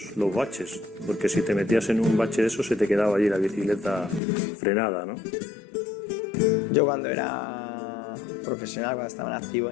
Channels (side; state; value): right; drops out; at 4.2 s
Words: baches, porque si te metías en un bache de eso se te quedaba allí la bicicleta frenada, ¿no? Yo cuando era profesional, cuando estaba en activo,